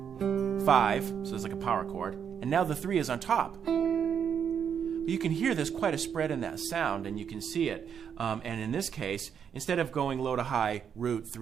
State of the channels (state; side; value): quieter; left; 7.8 dB